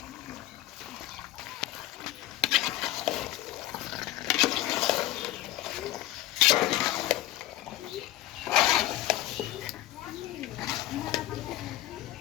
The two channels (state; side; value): quieter; right; 15.3 dB